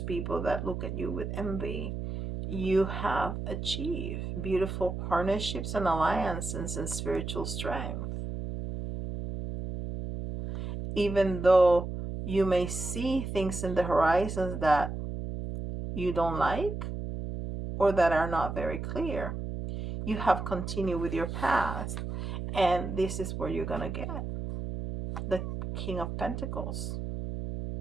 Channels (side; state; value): right; noise; hum, 5 dB below the sound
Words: that look at you with envy, you have achieved beautiful partnerships and alliances and spiritual strength. Even though you may see things in the horizons that you don't like or that are not very clear, you have continued with your path. And this is where you're going to get the King of Pentacles.